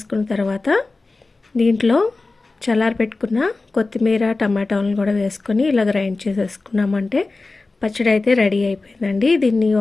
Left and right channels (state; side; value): quieter; right; 3.5 dB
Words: తర్వాత దీంట్లో చల్లారబెట్టుకున్న కొత్తిమీర టమాటాలను కూడా వేసుకొని ఇలా గ్రైండ్ చేసేసుకున్నామంటే పచ్చడి అయితే రెడీ అయిపోయిందండి. దీన్ని